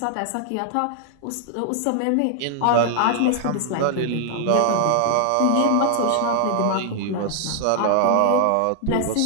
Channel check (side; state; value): both; different; correlation 0.00